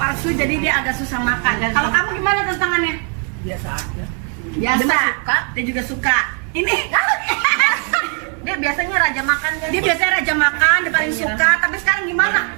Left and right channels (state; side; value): quieter; left; 39.4 dB